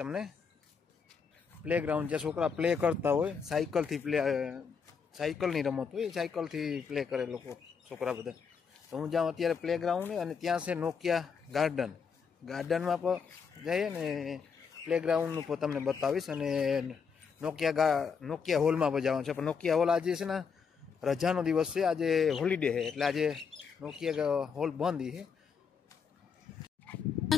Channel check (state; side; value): quieter; right; 6.0 dB